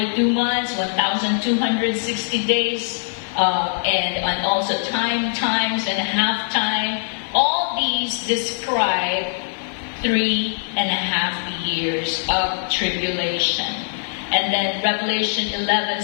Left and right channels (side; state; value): right; silent; 65 dB below the other